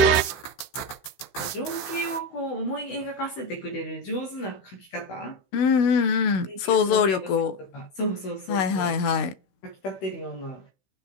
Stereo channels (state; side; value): late; right; 16 ms